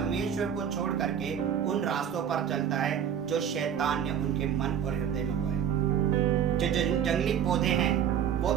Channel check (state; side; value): quieter; left; 8.7 dB